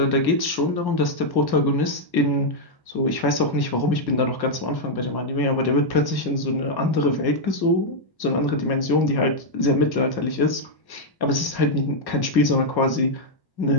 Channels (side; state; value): right; late; 1.5 ms